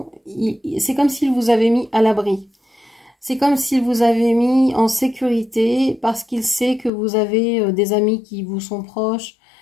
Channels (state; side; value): drops out; right; at 6.9 s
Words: c'est comme s'il vous avait mis à l'abri. C'est comme s'il vous avait mis en sécurité parce qu'il sait que vous avez des amis qui vous sont proches,